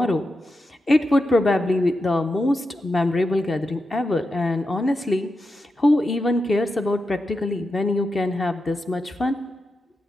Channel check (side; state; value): both; normal; correlation 0.88